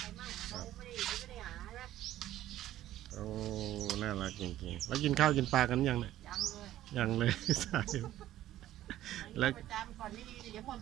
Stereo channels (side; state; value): left; quieter; 13.5 dB